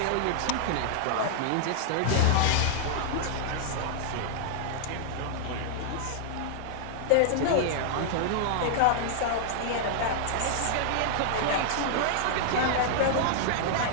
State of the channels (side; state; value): both; different; correlation -0.01